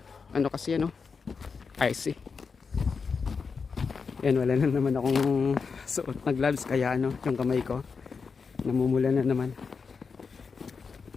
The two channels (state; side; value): quieter; right; 5.3 dB